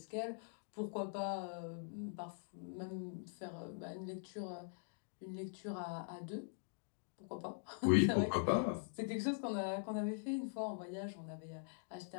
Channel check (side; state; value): right; silent; digital silence